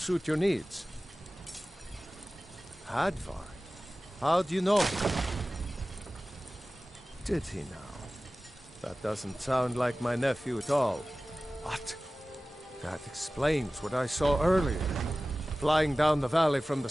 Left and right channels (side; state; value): both; normal; correlation 0.97